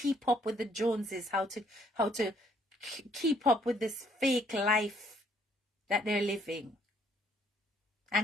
up with the Joneses. How to keep up with this fake life that they're living.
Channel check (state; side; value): normal; both; correlation 0.65